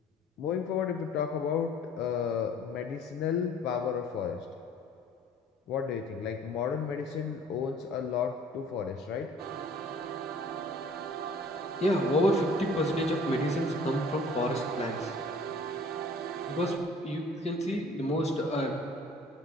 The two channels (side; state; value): both; normal; correlation 0.51